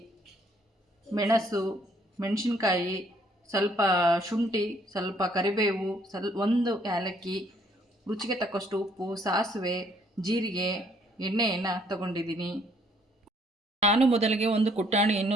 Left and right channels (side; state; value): both; normal; correlation 0.65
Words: ಮೆಣಸು, ಮೆಣಸಿನ್ಕಾಯಿ, ಸ್ವಲ್ಪ ಶುಂಠಿ, ಸ್ವಲ್ಪ ಕರಿಬೇವು, ಒಂದು ಏಲಕ್ಕಿ, ರುಚಿಗೆ ತಕ್ಕಷ್ಟು ಉಪ್ಪು, ಸಾಸಿವೆ, ಜೀರಿಗೆ, ಎಣ್ಣೆಯನ್ನು ತಗೊಂಡಿದ್ದೀನಿ. ನಾನು ಮೊದಲಿಗೆ ಒಂದು